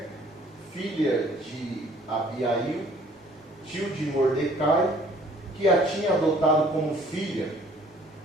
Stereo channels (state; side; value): normal; both; correlation 0.57